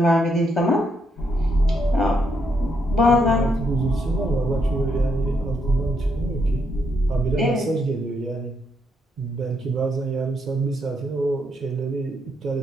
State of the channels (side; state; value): both; normal; correlation 0.77